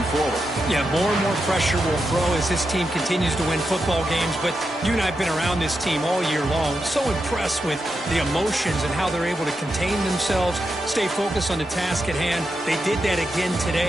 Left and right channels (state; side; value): normal; both; correlation 0.86